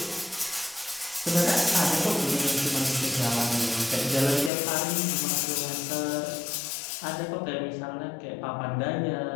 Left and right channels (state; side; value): drops out; right; at 4.5 s